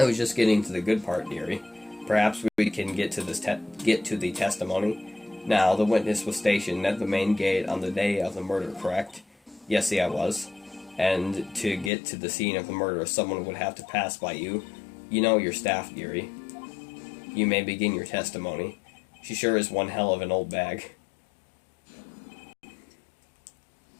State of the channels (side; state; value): right; drops out; at 11.9 s